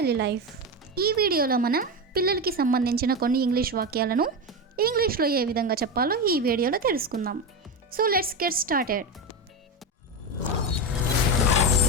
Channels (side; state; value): both; normal; correlation 0.16